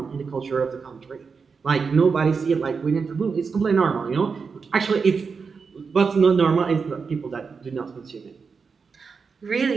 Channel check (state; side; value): quieter; left; 5.3 dB